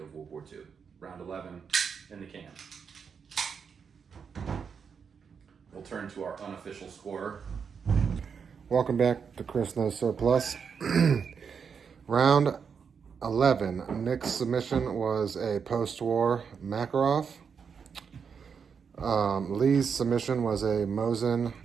World War II. Round 11 in the can. We'll turn to our unofficial scorer. Welcome back to Chris Knows Surplus. Round 11. Nick's submission was a post-war Makarov. Lee's submission was a Mosin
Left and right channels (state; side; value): quieter; left; 6.4 dB